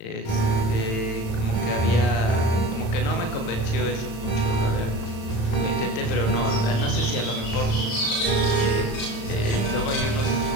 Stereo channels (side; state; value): right; late; 36 ms